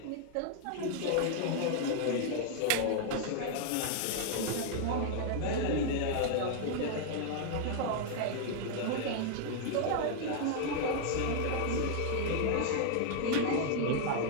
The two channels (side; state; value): both; different; correlation 0.00